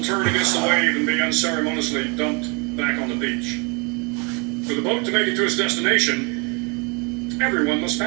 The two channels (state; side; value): quieter; left; 31.3 dB